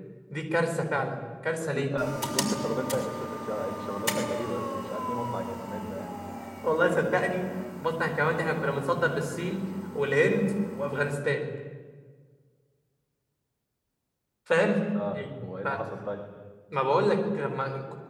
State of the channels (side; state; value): both; identical; correlation 1.00